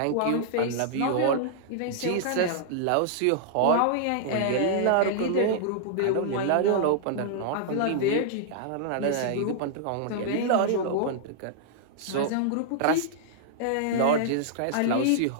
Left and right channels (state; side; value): different; both; correlation -0.01